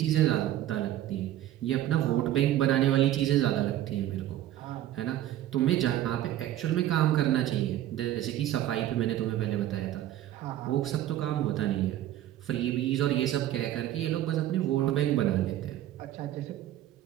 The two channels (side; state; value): left; quieter; 13.0 dB